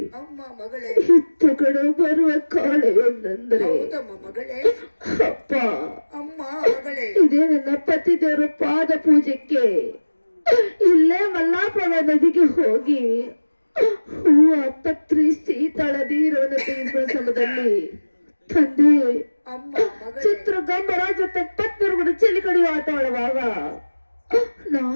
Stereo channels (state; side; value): inverted; both; correlation -1.00